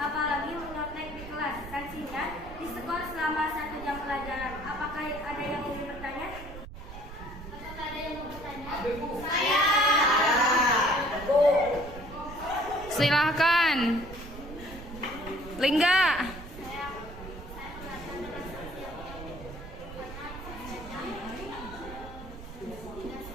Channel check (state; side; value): noise; right; rumble, 13 dB below the sound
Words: menyontek di kelas. Sanksinya diskor selama 1 jam pelajaran. Apakah ada yang ingin bertanya? Apakah ada yang mau bertanya? Saya. Silahkan. Lingga.